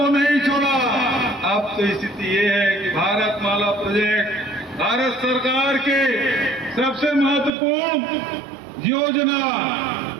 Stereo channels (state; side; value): drops out; left; at 7.5 s